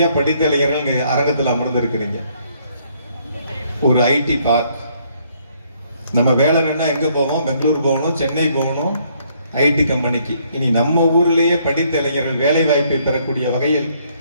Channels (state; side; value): inverted; both; correlation -0.68